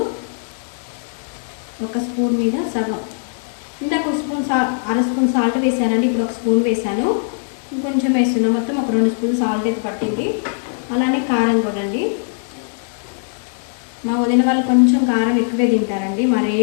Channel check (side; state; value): right; silent; digital silence